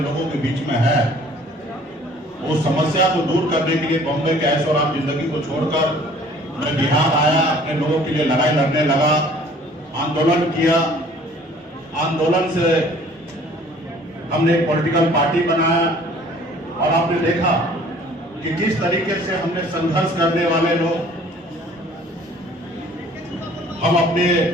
के बीच में है। वो समस्या को दूर करने के लिए बॉम्बे के ऐशो आराम जिंदगी को छोड़कर मैं बिहार आया, अपने लोगों के लिए लड़ाई लड़ने लगा, आंदोलन किया। आंदोलन से हमने एक पॉलिटिकल पार्टी बनाया और आपने देखा कि किस तरीके से हमने संघर्ष करने वाले लोग, हम अपने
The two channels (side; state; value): both; normal; correlation 0.53